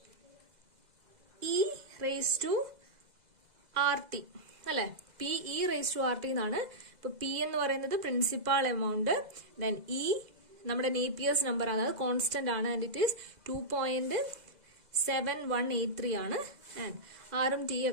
E raise to R T അല്ലെ? P E raise to R T എന്നാണ്. ഇപ്പൊ പി എന്ന് പറയുന്നത് പ്രിൻസിപ്പാൾ എമൗണ്ട്, ദെൻ ഇ നമ്മുടെ നേപ്പിയേഴ്സ് നമ്പർ ആണ്, അത് കോൺസ്റ്റന്റ് ആണ്. ആൻഡ് ഇറ്റ് ഈസ് 2.7183 ആണ്. ആൻഡ് ആറും ടി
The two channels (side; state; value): left; late; 2.0 ms